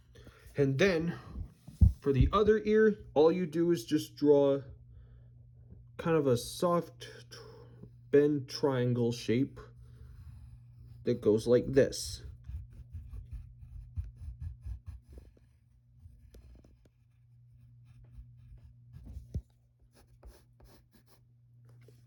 And then for the other ear, all you do is just draw kind of a soft bend triangle shape that goes like this.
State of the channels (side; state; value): both; identical; correlation 1.00